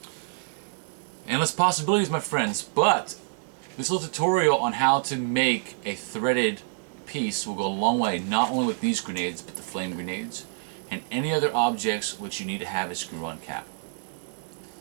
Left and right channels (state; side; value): silent; left; digital silence